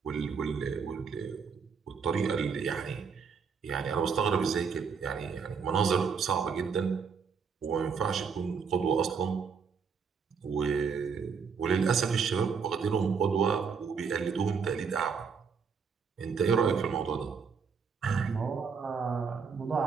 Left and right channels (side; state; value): left; quieter; 5.9 dB